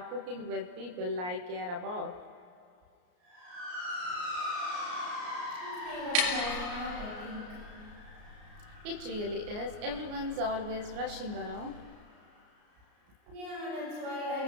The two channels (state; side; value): late; left; 33 ms